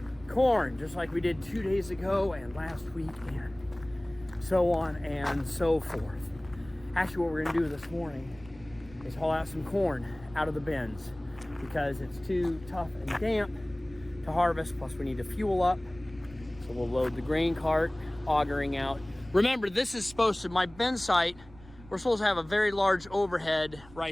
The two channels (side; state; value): right; noise; rumble, 21 dB below the sound